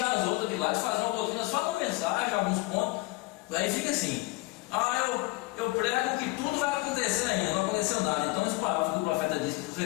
as outras de lado, fazer uma doutrina só com a mensagem, alguns pontos. Aí fica assim: eu prego que tudo vai acontecer ainda, não aconteceu nada. Então essa palavra que o profeta disse para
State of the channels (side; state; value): right; quieter; 22.1 dB